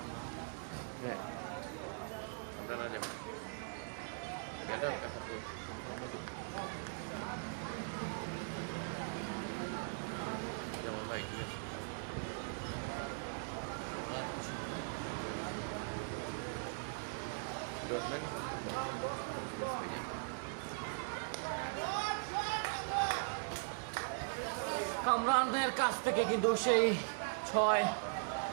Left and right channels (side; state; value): left; silent; digital silence